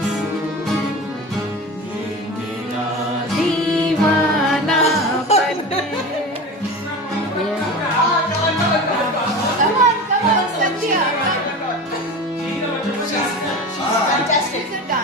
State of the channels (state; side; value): normal; both; correlation 0.30